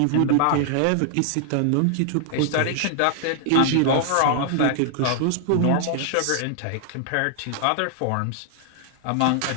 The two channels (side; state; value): both; different; correlation 0.00